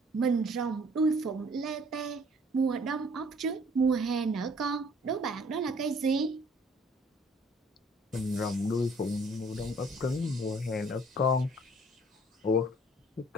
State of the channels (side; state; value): both; normal; correlation 0.57